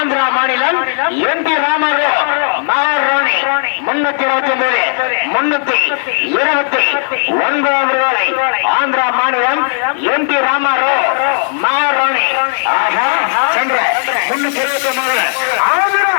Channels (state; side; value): silent; right; digital silence